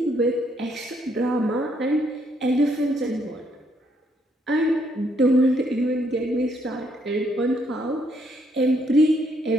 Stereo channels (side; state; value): both; normal; correlation 0.72